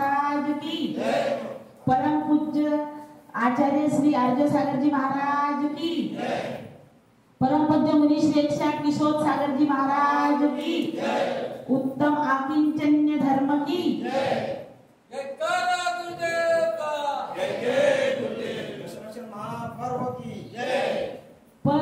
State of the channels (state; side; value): identical; both; correlation 1.00